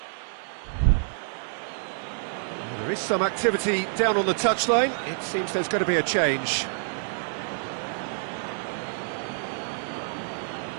There is some activity down on the touchline. It seems there's going to be a change.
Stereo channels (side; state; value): left; silent; 59 dB below the other